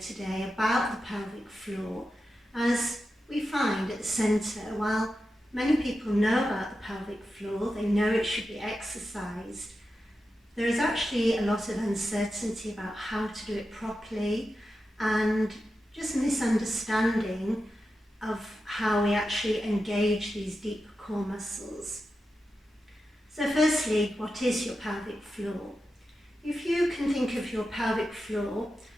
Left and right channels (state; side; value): normal; both; correlation 0.90